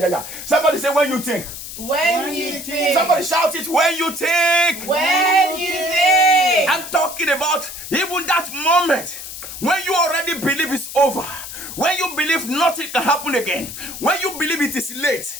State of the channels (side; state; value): left; noise; hiss, 10 dB below the sound